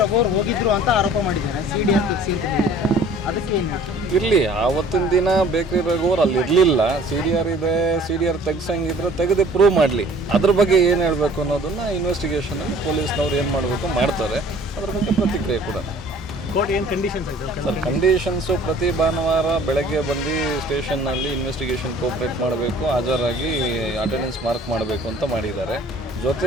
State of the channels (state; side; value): normal; both; correlation 0.51